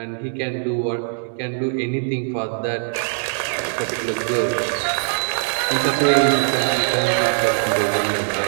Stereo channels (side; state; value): left; silent; digital silence